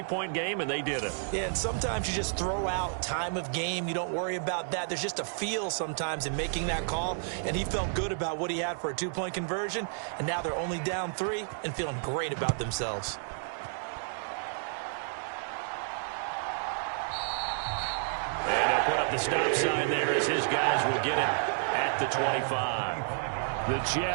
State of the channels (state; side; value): silent; left; digital silence